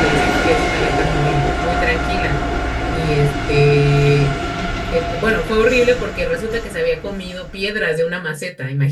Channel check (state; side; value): identical; both; correlation 1.00